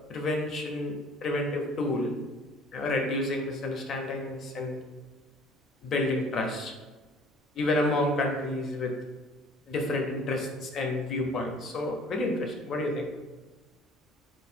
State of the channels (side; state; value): both; normal; correlation 0.52